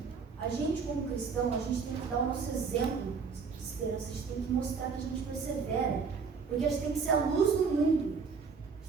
a gente como cristão, a gente tem que dar o nosso exemplo de esperança, a gente tem que mostrar que a gente persevera, porque a gente tem que ser a luz do mundo. A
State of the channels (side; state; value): left; quieter; 5.4 dB